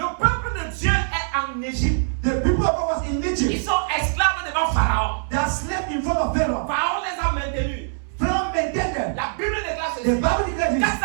peuple de Dieu est en Égypte. the people of God was in Ils Egypt. sont esclaves devant Pharaon. They are slaves in front of Pharaoh. Pharaon les a maintenus. Pharaoh maintained them. La Bible déclare The ceci. Bible declares this.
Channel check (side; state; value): left; silent; 63 dB below the other